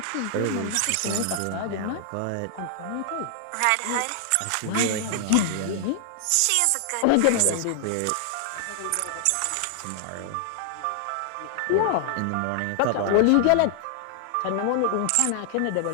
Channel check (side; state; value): both; different; correlation 0.00